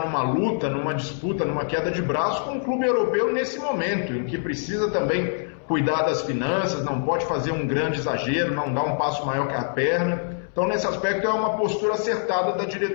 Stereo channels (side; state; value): right; silent; 62 dB below the other